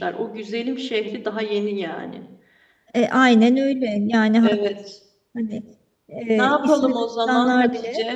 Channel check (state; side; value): identical; both; correlation 1.00